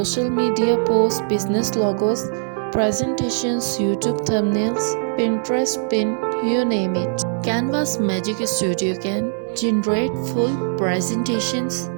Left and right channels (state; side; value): silent; left; 65 dB below the other